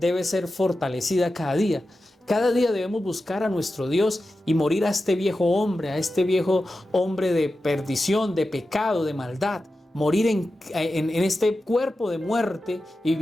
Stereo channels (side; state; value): both; normal; correlation 0.92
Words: ser fortalecida cada día. Cada día debemos buscar a nuestro Dios y morir a este viejo hombre de perdición, de pecado, de maldad. Morir en este cuerpo de muerte y